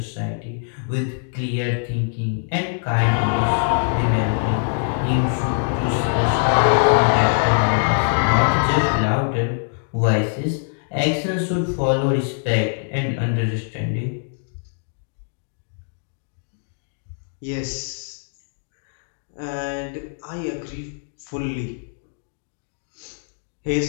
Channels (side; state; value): right; silent; digital silence